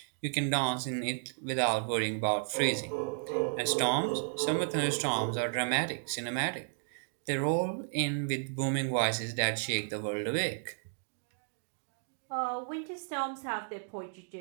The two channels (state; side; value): silent; left; digital silence